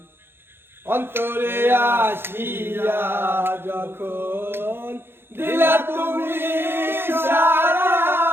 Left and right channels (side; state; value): left; late; 0.11 ms